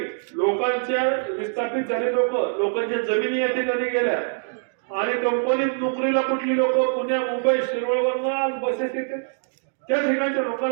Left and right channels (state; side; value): silent; left; digital silence